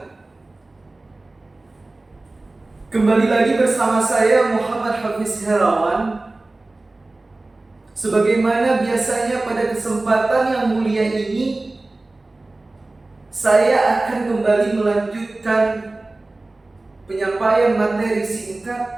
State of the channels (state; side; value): quieter; left; 3.0 dB